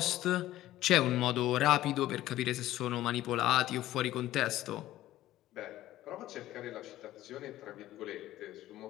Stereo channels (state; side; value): quieter; right; 14.7 dB